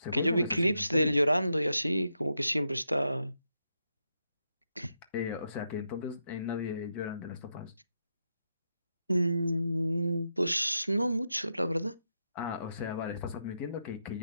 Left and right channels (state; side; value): inverted; both; correlation -0.84